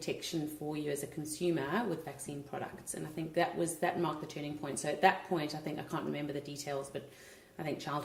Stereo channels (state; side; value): identical; both; correlation 1.00